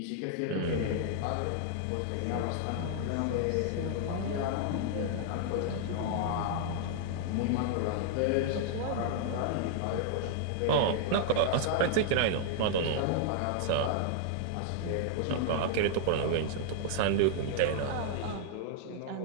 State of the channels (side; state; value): both; different; correlation -0.01